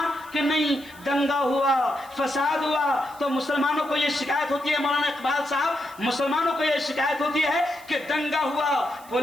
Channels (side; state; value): right; noise; hiss, 22 dB below the sound